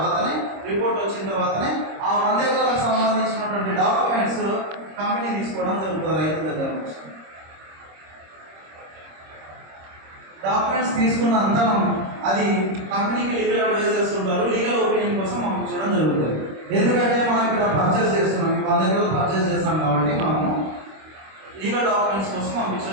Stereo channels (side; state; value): left; late; 26 ms